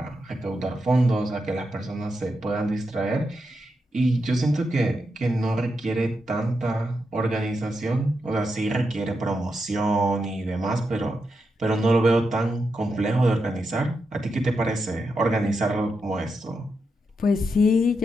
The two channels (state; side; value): normal; both; correlation 0.85